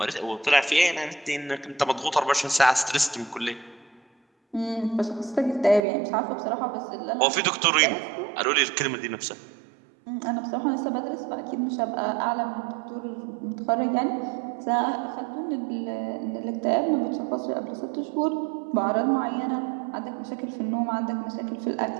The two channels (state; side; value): drops out; left; at 5.9 s